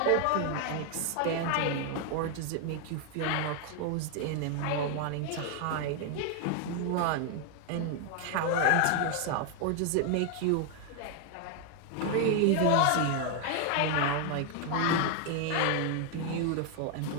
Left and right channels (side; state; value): both; different; correlation 0.00